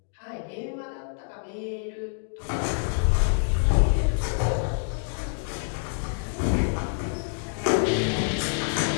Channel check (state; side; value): silent; right; digital silence